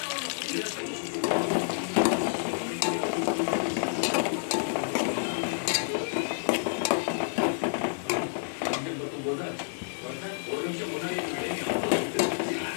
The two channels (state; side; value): silent; right; 58 dB below the other